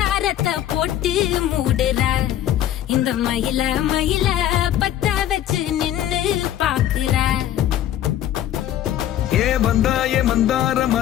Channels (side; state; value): right; quieter; 11.8 dB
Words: போட்டு மூடுற இந்த மயில மயில பத்த வச்சு நின்னு பாக்குற. ஏ வந்தாய மந்தார